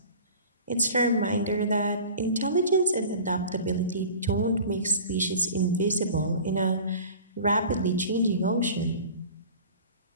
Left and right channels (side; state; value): both; inverted; correlation -0.41